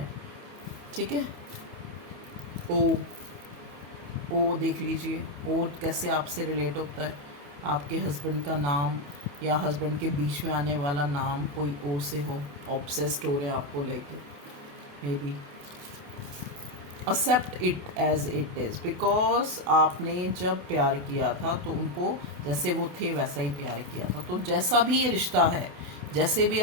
ठीक है। ओ देख लीजिए, ओ कैसे आपसे रिलेट होता है, आपके हस्बैंड का नाम या हस्बैंड के बीच में आने वाला नाम कोई ओ से हो, ऑब्सेस्ड हो रहे हैं आपको लेके, maybe accept it as it is, because आपने जब प्यार किया था तो उनको जैसे वो थे वैसा ही प्यार किया था। तो जैसा भी ये रिश्ता है, जैसे भी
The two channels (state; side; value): late; left; 28 ms